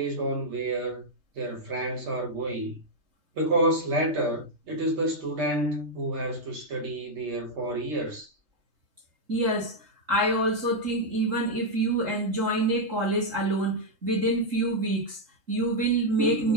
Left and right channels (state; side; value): late; left; 3.3 ms